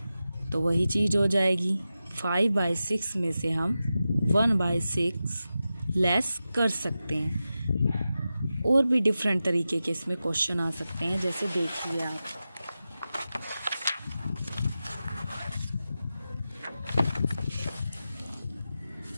तो वही चीज़ हो जाएगी। 5/6 में से हम 1/6 लेस कर सकते हैं। और भी डिफरेंट तरीके के इसमें क्वेश्चन आ सकते हैं, जैसे देखिए आप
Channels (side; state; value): both; inverted; correlation -0.92